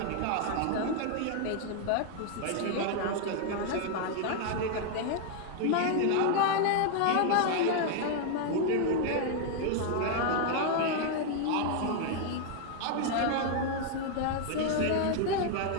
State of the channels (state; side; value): different; both; correlation 0.00